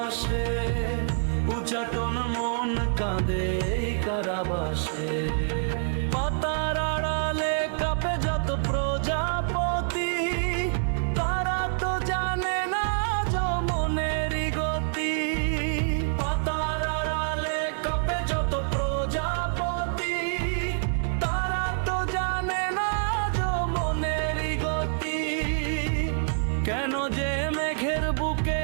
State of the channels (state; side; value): silent; left; 60 dB below the other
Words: উচ্চাটন মন কাঁদে কারাবাসে। পাতার আড়ালে কাঁপে যত প্রজাপতি, তারা তো জানে না যমনেরই গতি। পাতার আড়ালে কাঁপে যত প্রজাপতি, তারা তো জানে না যমনেরই গতি। কেন যে মেঘের বুকে